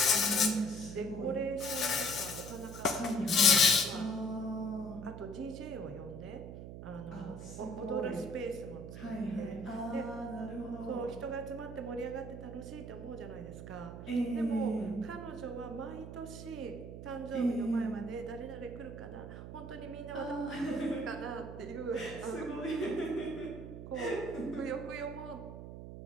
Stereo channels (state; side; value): noise; right; hum, 10 dB below the sound